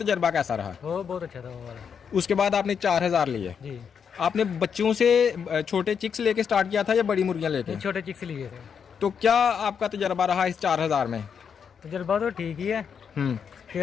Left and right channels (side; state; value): right; quieter; 7.0 dB